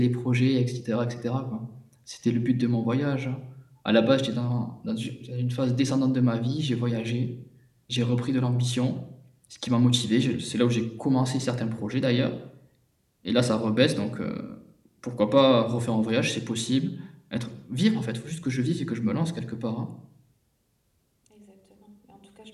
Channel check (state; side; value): identical; both; correlation 1.00